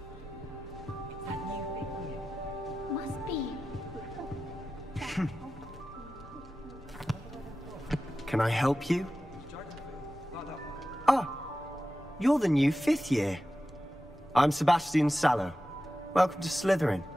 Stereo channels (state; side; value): normal; both; correlation 0.93